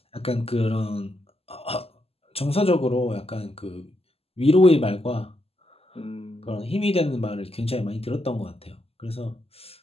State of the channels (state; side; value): late; right; 0.29 ms